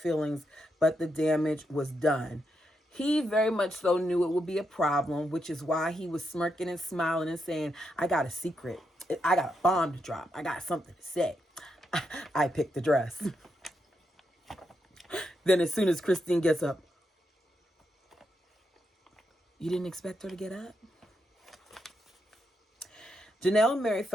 but the damage was done. He very much so knew it would be a problem, which is why he was smirking and smiling and saying, I got a secret. I got a bomb to drop. I got something to say. I picked the dress. Then as soon as Christine gets up, you didn't expect her to get up? Janelle and Mary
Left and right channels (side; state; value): both; normal; correlation 0.83